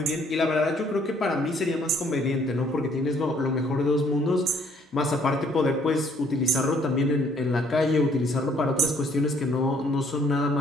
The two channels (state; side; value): normal; both; correlation 0.63